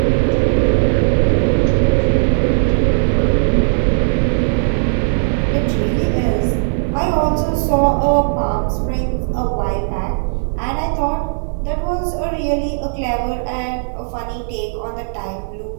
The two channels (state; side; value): silent; left; digital silence